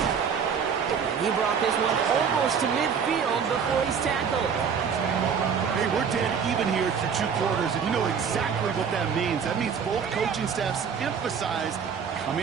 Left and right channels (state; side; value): quieter; left; 6.7 dB